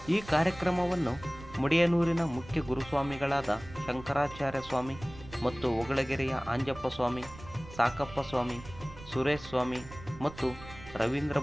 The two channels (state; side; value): noise; right; rumble, 16 dB below the sound